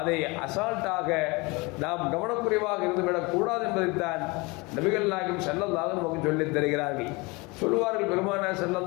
அசால்ட்டாக நாம் கவனக்குறைவாக இருந்துவிடக் கூடாது என்பதைத்தான் நபிகள் நாயகம் ஸல்லல்லாஹு அலைஹி வஸல்லம் சொல்லித் தருகிறார்கள். சொல்வார்கள் பெருமானார்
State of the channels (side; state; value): right; quieter; 25.9 dB